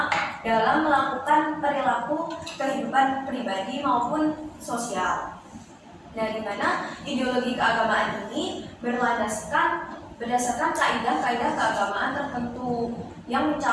dalam melakukan perilaku kehidupan pribadi maupun sosial. Nah, di mana ideologi keagamaan ini berdasarkan kaidah-kaidah keagamaan tertentu yang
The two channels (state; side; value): identical; both; correlation 1.00